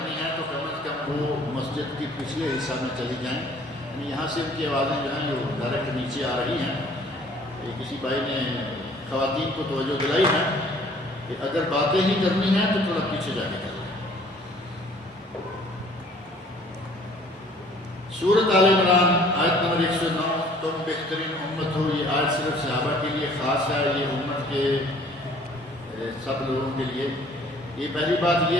ہیں تو کم از کم وہ مسجد کی پچھلے حصہ میں چلی جائیں، یعنی یہاں سے ان کی آوازیں جو ہیں وہ ڈائریکٹ نیچے آ رہی ہیں۔ کسی بھائی نے خواتین کو توجہ دلائی ہے کہ اگر باتیں ہی کرنی ہیں تو تھوڑا پیچھے جا کے کریں۔ سورۃ آل عمران آیت نمبر 109، تم بہترین امت ہو۔ یہ آیت صرف صحابہ کے لیے خاص ہے، یہ امت کے سب لوگوں کے لیے۔ یہ پہلی بات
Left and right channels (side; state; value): both; normal; correlation 0.55